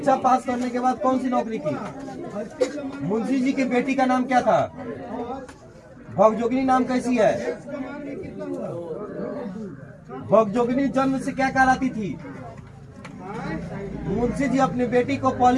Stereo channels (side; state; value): both; identical; correlation 1.00